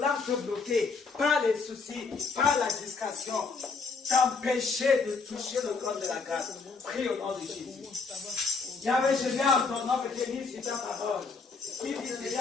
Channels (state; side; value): quieter; right; 4.5 dB